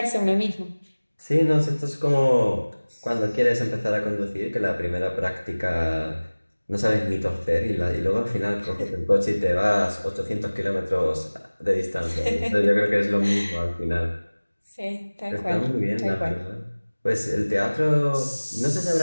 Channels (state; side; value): inverted; both; correlation -1.00